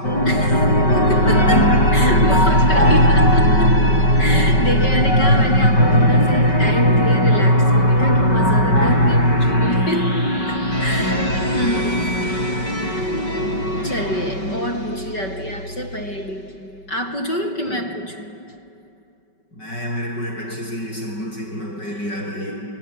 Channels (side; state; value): right; late; 5.2 ms